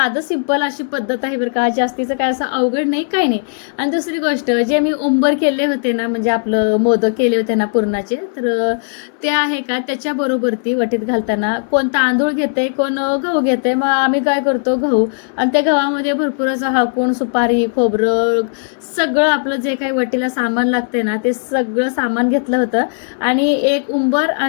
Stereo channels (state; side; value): silent; right; digital silence